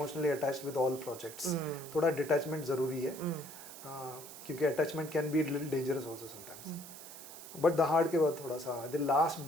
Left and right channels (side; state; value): right; noise; hiss, 14 dB below the sound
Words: attached with all projects. थोड़ा डिटैचमेंट ज़रूरी है, क्योंकि attachment can be little dangerous also sometimes. But the के बाद थोड़ा सा the last